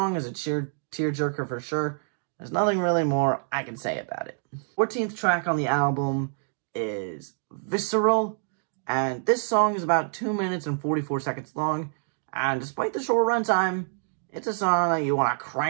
is a tearjerker for sure. There's nothing really more I can say about it. 14th track on the album is Visceral. And this song is about 2 minutes and 44 seconds long. And despite the short runtime, it's a song that you want to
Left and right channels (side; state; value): left; silent; digital silence